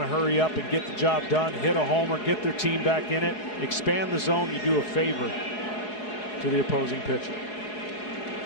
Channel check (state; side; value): late; right; 4.7 ms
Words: to hurry up and get the job done, hit a homer, get their team back in it, expand the zone. You do a favor to the opposing pitcher.